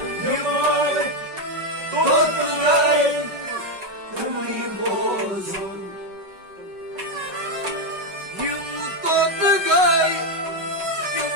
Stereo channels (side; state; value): left; late; 5.3 ms